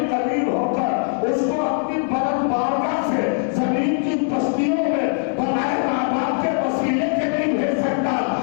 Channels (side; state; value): right; silent; 56 dB below the other